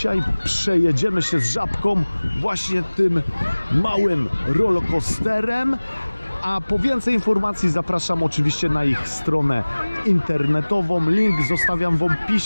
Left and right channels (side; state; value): both; inverted; correlation -1.00